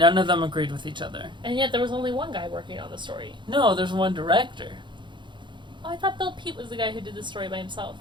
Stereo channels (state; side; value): late; left; 0.23 ms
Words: of them agreed with each other. And yet there was only one guy working on the story. No, there's one director. Oh, I thought Bill Peet was the guy who did the story by himself.